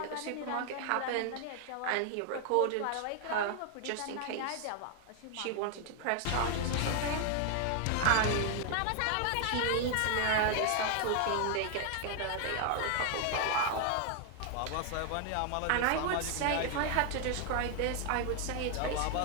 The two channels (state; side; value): different; both; correlation 0.00